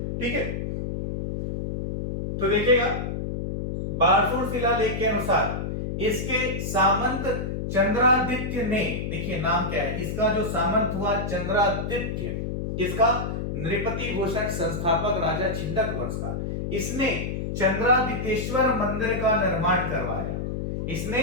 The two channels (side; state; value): left; noise; hum, 3 dB below the sound